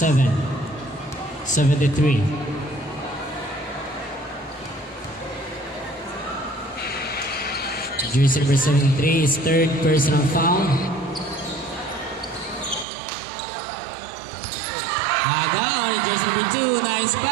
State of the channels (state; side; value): drops out; left; at 12.9 s